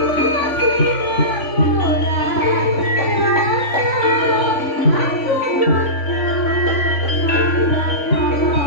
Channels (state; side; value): late; right; 3.5 ms